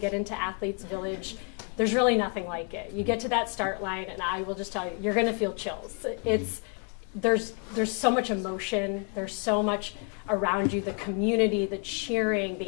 into Athletes Village, there's really nothing like it. You get to that start line, and I will just tell you, you're going to feel chills. There's so much emotion. There's so much around you. The community, the cheering,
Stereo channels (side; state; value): right; quieter; 36.7 dB